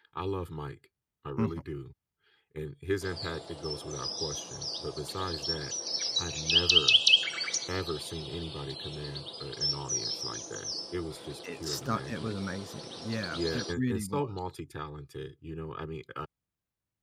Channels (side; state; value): both; identical; correlation 1.00